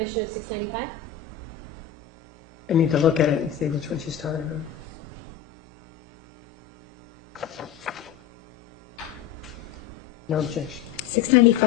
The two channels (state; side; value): quieter; right; 8.6 dB